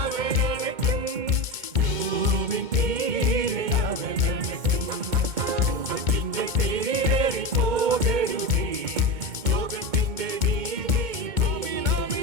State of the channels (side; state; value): left; late; 2.2 ms